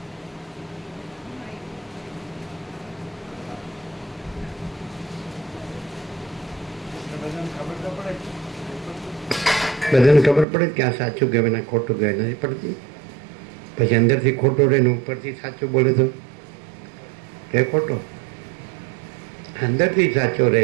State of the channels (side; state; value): left; drops out; at 10.5 s